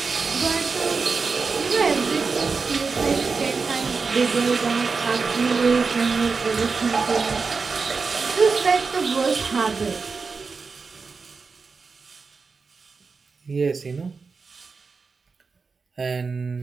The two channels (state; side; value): quieter; left; 4.7 dB